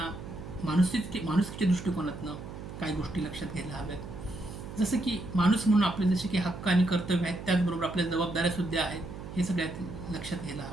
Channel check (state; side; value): noise; right; hum, 11 dB below the sound